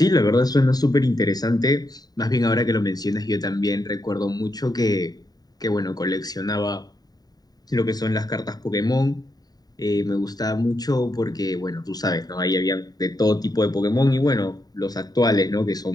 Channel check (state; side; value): late; right; 0.19 ms